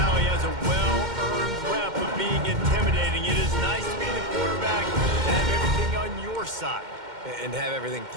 has a well-earned rep of being intimidating. It is nice to be the quarterback and have everything on your side. And have everything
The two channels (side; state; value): left; late; 2.1 ms